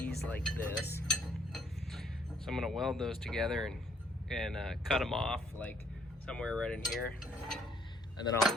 like this. So I'm going to weld those together and cut them off like somewhere right in here, and then I'll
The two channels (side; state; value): both; normal; correlation 0.66